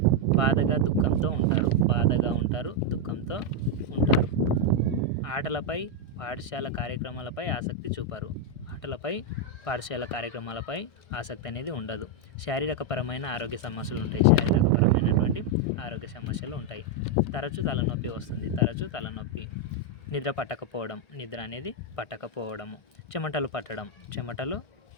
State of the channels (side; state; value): right; late; 1.6 ms